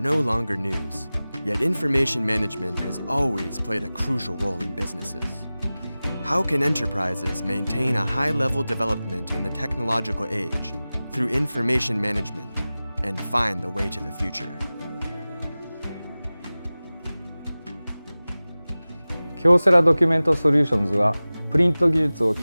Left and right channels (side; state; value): both; inverted; correlation -0.98